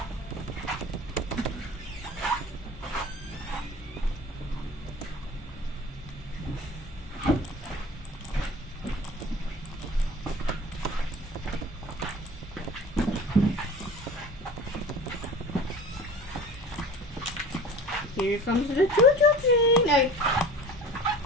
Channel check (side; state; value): both; normal; correlation 0.40